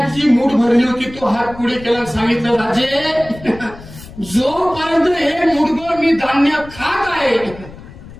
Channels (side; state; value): left; noise; rumble, 17 dB below the sound